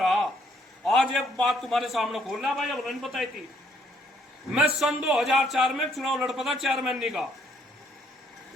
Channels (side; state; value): both; normal; correlation 0.67